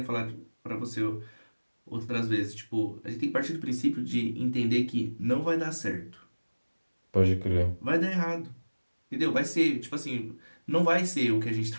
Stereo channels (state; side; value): inverted; both; correlation -1.00